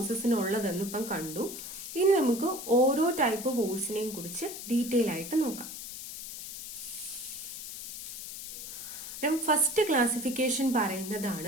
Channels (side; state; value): left; noise; hiss, 9 dB below the sound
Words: ഇപ്പം കണ്ടു. ഇനി നമുക്ക് ഓരോ ടൈപ്പ് ഫോഴ്സിനെയും കുറിച്ച് ഡീറ്റെയിൽ ആയിട്ട് നോക്കാം. ഫസ്റ്റ് ക്ലാസിഫിക്കേഷൻ